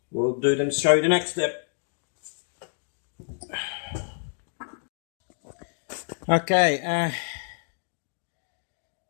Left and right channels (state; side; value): silent; right; digital silence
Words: We'll do them, show you the next step. Okay,